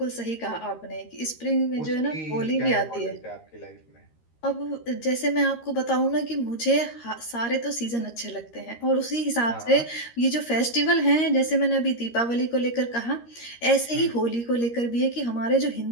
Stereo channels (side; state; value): right; late; 13 ms